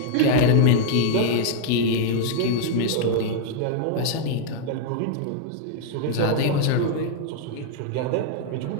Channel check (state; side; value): different; both; correlation 0.00